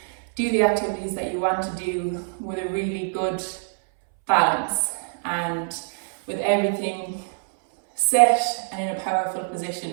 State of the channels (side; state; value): left; silent; 61 dB below the other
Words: do the activities that you want to do with a really good balance and with everything set and in a powerful